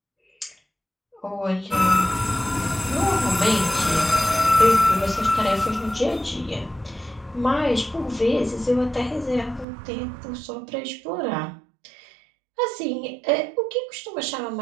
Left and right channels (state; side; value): drops out; left; at 9.7 s